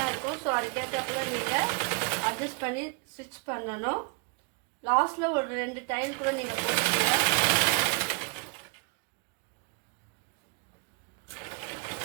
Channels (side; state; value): left; quieter; 33.9 dB